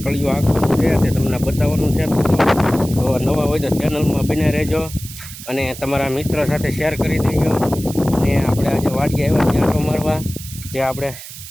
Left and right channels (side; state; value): right; noise; hiss, 13 dB below the sound